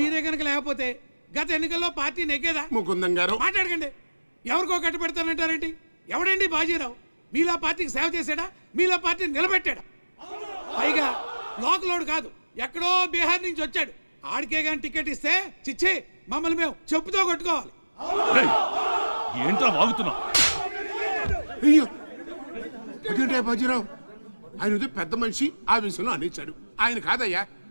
కనుక లేకపోతే గత ఎన్నికల్లో పార్టీ నెగ్గేదా? ముకుందం గారు మాట్లాడకండి. ఎవరికో కట్టు పెడతానంటారేంటి? ఎవడండి బాజీరావు? మీలా పార్టీకి సేవ చేశాడా? మీలా పార్టీని నిలబెట్టాడా? పైగా లోకలోడు కాదు, ఎక్కడో బీహార్ నుంచి వచ్చాడు. ఆడికే గాని టికెట్ ఇస్తే చిచ్చి మమ్మల్ని మేము చెప్పుతో కొట్టుకోవాలి. ఏంట్రా వాగుతున్నావు? అయ్యో అదేంటే బాజీరావు, ఆయన పెద్ద మనిషి ఆ విషయంలో అనేచాడు. ఆయన కాదయ్యా,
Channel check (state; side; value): inverted; both; correlation -1.00